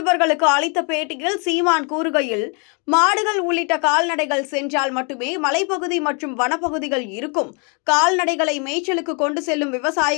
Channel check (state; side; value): quieter; right; 35.6 dB